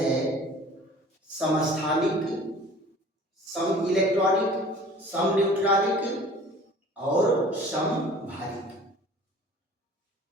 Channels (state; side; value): normal; both; correlation 0.47